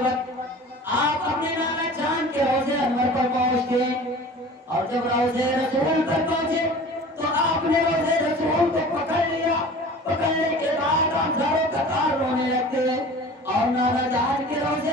وقت آپ اپنے نانا جان کے روضے انور پر پہنچتے ہیں، اور جب روضے رسول پر پہنچے تو آپ نے روضے رسول کو پکڑ لیا۔ پکڑنے کے بعد آپ زاروں قطار رونے لگتے ہیں اور نانا جان کے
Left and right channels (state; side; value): normal; both; correlation 0.41